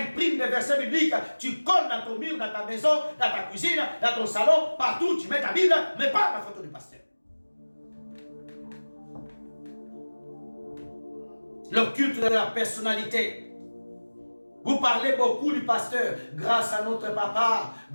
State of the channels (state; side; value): inverted; both; correlation -1.00